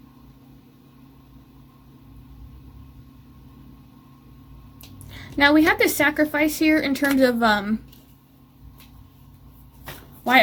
Now, we have this sacrifice here in terms of why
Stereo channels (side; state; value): both; identical; correlation 1.00